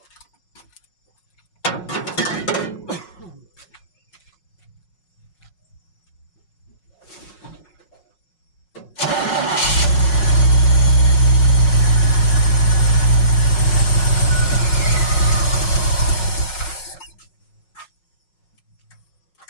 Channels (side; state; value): right; late; 5.5 ms